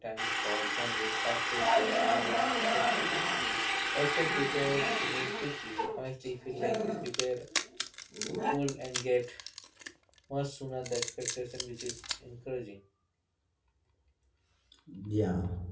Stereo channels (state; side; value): identical; both; correlation 1.00